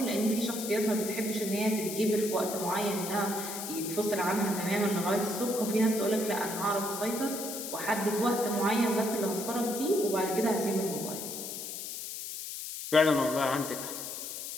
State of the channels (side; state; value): left; noise; hiss, 7 dB below the sound